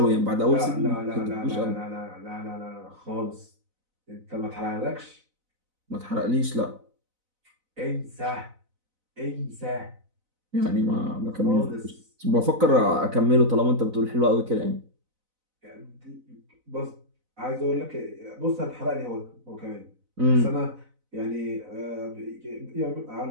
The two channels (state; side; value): late; left; 4.0 ms